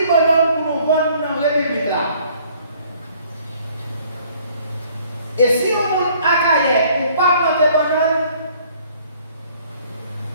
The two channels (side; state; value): both; inverted; correlation -0.59